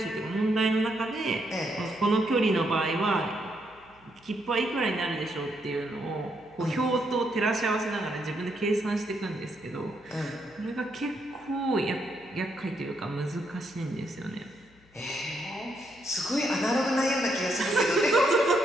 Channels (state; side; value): noise; left; hum, 29 dB below the sound